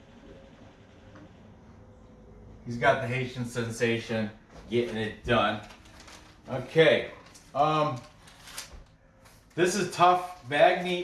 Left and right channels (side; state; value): both; identical; correlation 1.00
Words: He's got the Haitian sensation getting it done. Okay. This is tough.